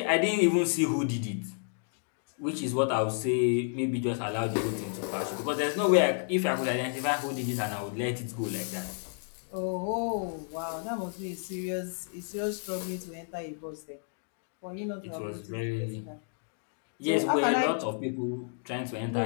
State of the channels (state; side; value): silent; right; 57 dB below the other